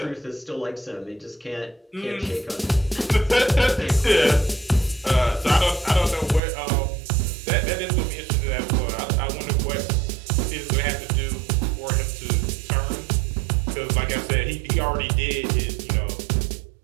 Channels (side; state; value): left; drops out; at 6.4 s